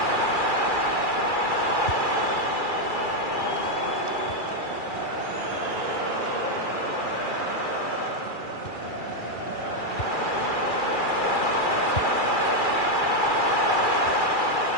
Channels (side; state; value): right; late; 2.4 ms